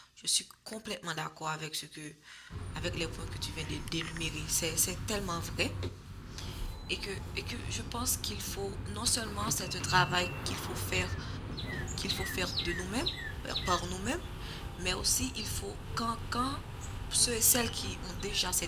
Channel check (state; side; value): identical; both; correlation 1.00